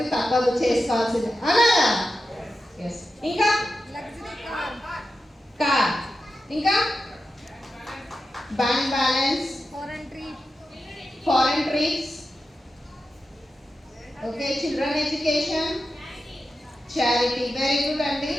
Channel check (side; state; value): both; normal; correlation 0.91